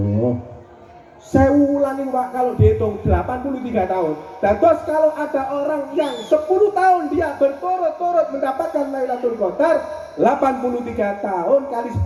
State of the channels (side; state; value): both; identical; correlation 1.00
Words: Saya ulangi, Pak, kalau dihitung 83 tahun. Terus kalau ada orang yang 10 tahun dia berturut-turut mendapatkan Lailatul Qadar, 83 tahun kali